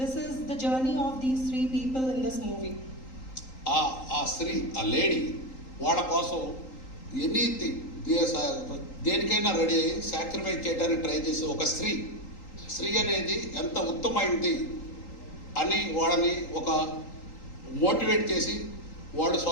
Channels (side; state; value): right; late; 3.8 ms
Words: the journey of these three people in this movie. ఆ స్త్రీ, ఆ lady వాళ్ళ కోసం anything దేనికైనా ready అయ్యి sacrifice చేయడానికి try చేసే ఒక స్త్రీ అనేది ఎంత ఉత్తమైంది అని వాళ్ళని ఒక మోటివేట్ చేసి వాళ్ళు